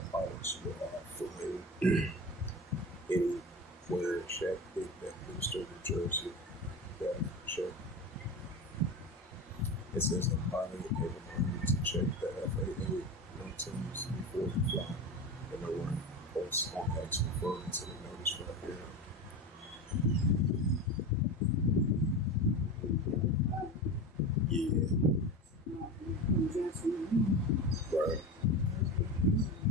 pilots who are flying anywhere, check the Bedminster, New Jersey, check. It says a pilot a reminder to check the FAA notice before you fly. And no one posts on X referring to the notice right here. Yeah. Right.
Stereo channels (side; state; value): both; normal; correlation 0.25